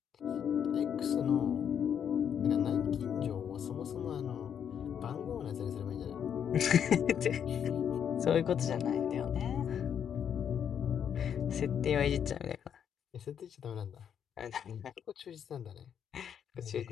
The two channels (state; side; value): quieter; right; 8.4 dB